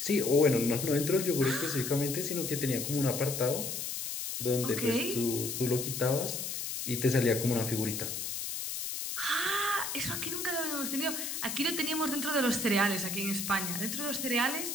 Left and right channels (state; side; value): noise; left; hiss, 4 dB below the sound